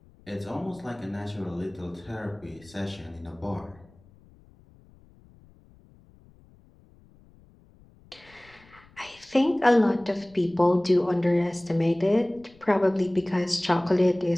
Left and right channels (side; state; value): left; noise; rumble, 27 dB below the sound